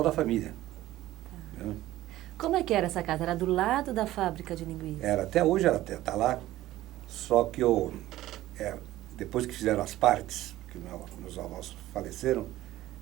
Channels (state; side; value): quieter; left; 15.4 dB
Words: a família. Tá. Né? Como é que era essa casa? Era do lado da fábrica de linguiça? Até hoje ela está lá. Só que depois que fizeram as partes, que meus avós faleceram,